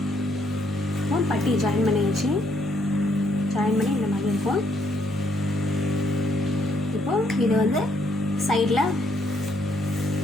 பட்டி ஜாயின் பண்ணியாச்சு. ஜாயின் பண்ணி இந்த மாதிரி இருக்கும். இப்போது இது வந்து சைடில்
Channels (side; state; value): both; normal; correlation 0.71